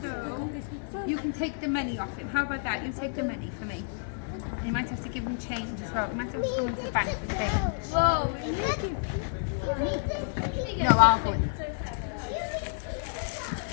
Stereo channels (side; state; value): right; silent; digital silence